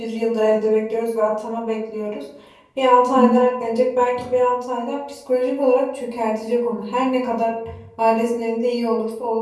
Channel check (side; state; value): both; identical; correlation 1.00